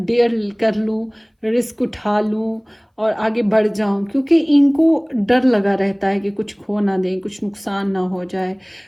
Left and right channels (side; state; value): both; identical; correlation 1.00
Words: कर लूँ, रिस्क उठा लूँ और आगे बढ़ जाऊं, क्योंकि इनको डर लगा रहता है कि कुछ खो ना दें, कुछ नुकसान ना हो जाए।